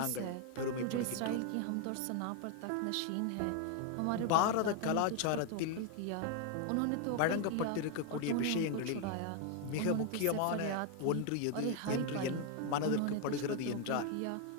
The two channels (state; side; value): different; both; correlation 0.01